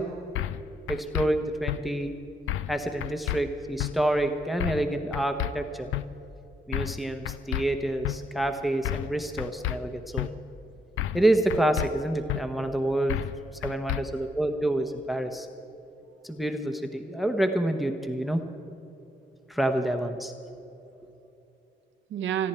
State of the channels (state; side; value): normal; both; correlation 0.75